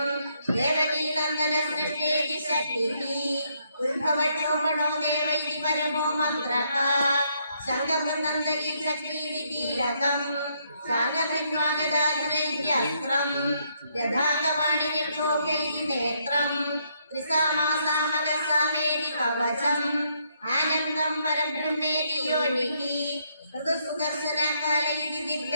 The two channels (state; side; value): inverted; both; correlation -0.74